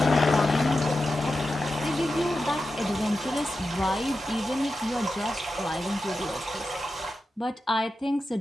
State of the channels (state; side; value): normal; both; correlation 0.91